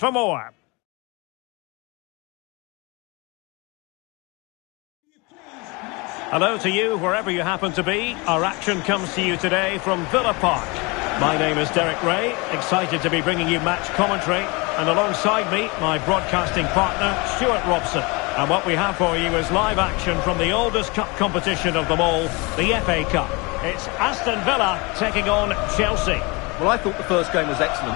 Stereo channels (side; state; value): right; quieter; 27.3 dB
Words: more. Hello to you, wherever you happen to be. Our action comes to you today from Villa Park. My name is Derek Ray, excited to be bringing you match commentary, and alongside me, my broadcasting partner, Stuart Robson. And what we have for you is live action from the oldest cup competition of them all, the FA Cup. It's Aston Villa taking on Chelsea. Well, I thought the first game was